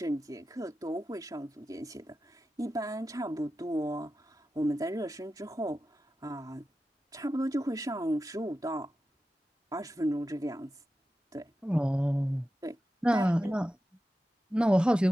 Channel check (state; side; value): normal; both; correlation 0.92